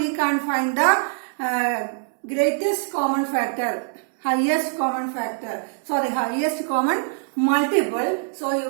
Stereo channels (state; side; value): silent; left; 63 dB below the other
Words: can find the greatest common factor, highest common factor. Sorry, highest common multiple. So you